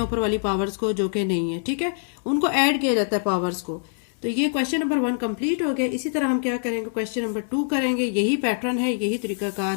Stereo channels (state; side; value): silent; right; 61 dB below the other